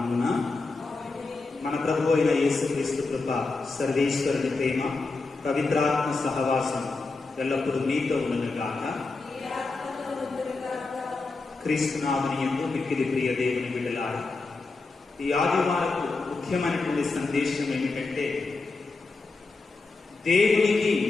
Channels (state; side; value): quieter; right; 3.8 dB